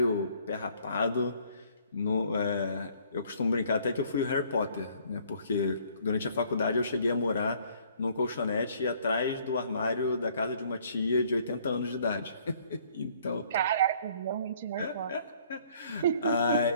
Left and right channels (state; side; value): inverted; both; correlation -0.60